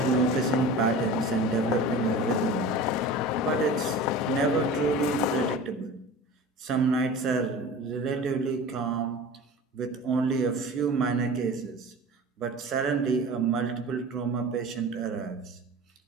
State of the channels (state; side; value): normal; both; correlation 0.36